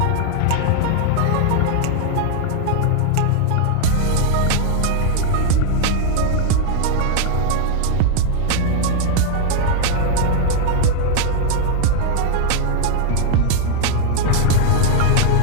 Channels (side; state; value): both; different; correlation 0.00